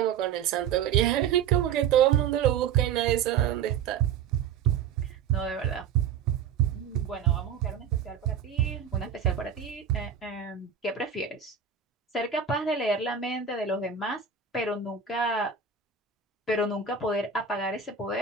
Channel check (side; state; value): left; quieter; 7.4 dB